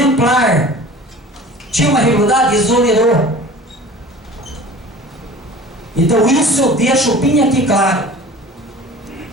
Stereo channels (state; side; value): normal; both; correlation 0.42